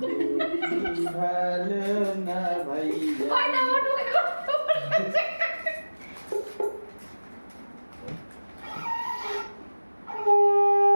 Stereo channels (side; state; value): both; inverted; correlation -1.00